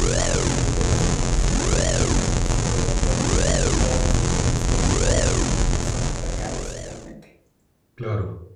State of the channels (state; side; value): identical; both; correlation 1.00